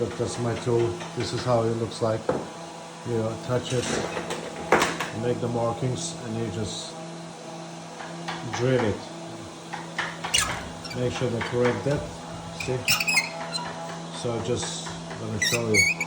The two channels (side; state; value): both; identical; correlation 1.00